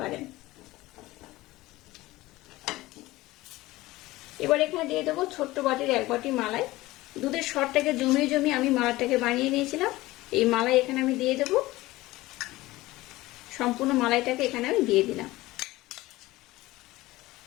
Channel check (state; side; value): quieter; right; 18.6 dB